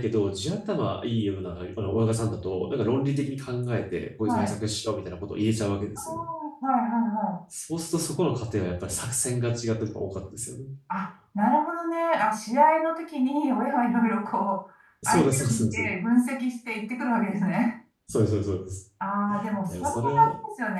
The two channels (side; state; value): both; identical; correlation 1.00